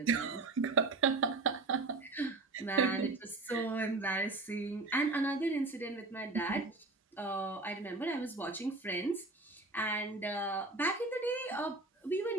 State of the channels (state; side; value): quieter; left; 3.3 dB